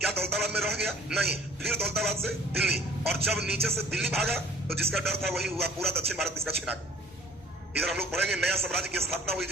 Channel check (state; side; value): normal; both; correlation 0.52